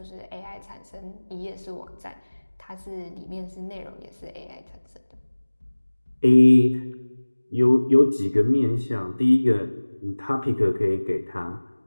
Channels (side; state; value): both; inverted; correlation -1.00